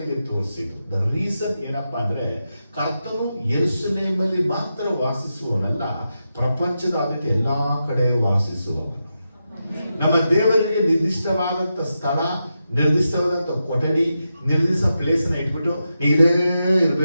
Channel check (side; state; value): both; inverted; correlation -0.88